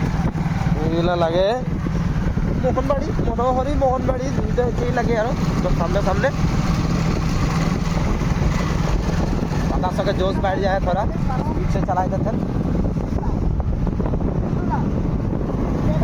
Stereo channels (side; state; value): both; identical; correlation 1.00